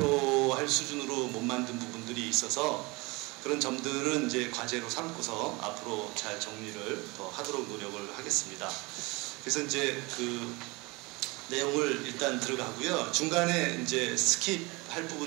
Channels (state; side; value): quieter; left; 25.2 dB